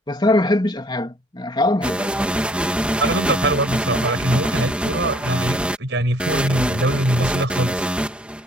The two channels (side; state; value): both; normal; correlation 0.60